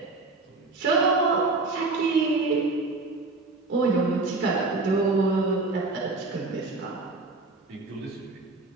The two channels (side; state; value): left; quieter; 3.5 dB